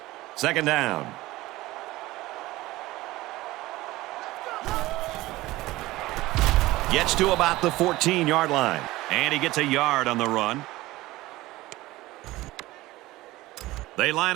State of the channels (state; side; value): quieter; left; 18.3 dB